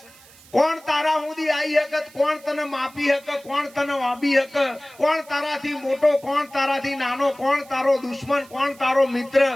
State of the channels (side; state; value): right; noise; hiss, 24 dB below the sound